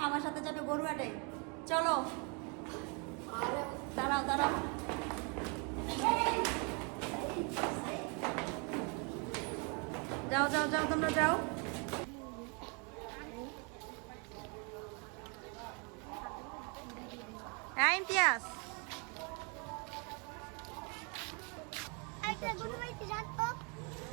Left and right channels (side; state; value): left; quieter; 34.2 dB